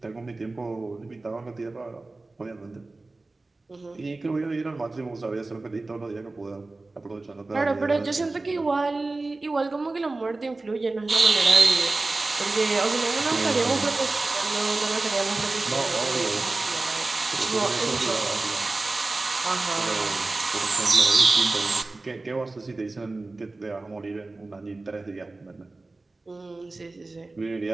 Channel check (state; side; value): quieter; left; 3.3 dB